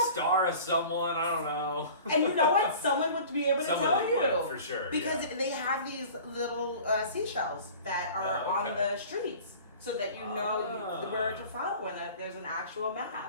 Star of someone, I don't know. And you know what? Someone would be able to tell you. Would, for sure. Because they have these little seashells that are on the streets so that you know where to follow and that there's an actual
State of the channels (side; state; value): both; inverted; correlation -0.43